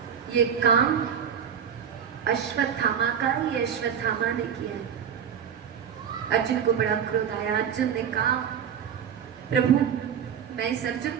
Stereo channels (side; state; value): left; quieter; 8.1 dB